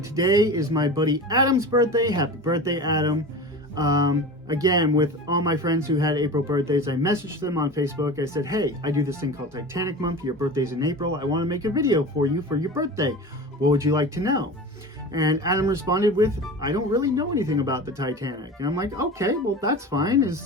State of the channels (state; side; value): normal; both; correlation 0.32